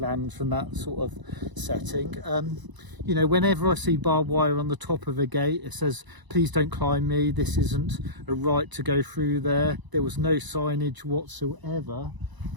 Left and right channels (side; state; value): left; late; 1.0 ms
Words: land from that sort of setting. You know, whenever I see barbed wire on the top of a gate, it says, please don't climb me, this isn't a right to go through there. There was no signage whatsoever,